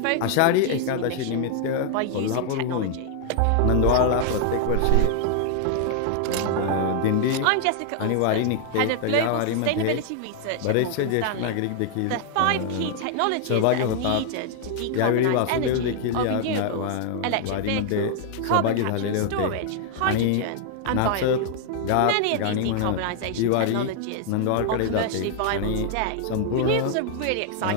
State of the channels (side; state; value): both; different; correlation 0.00